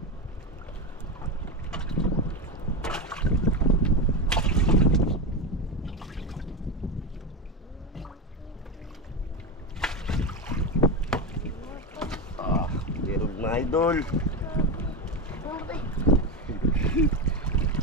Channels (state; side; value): normal; both; correlation 0.16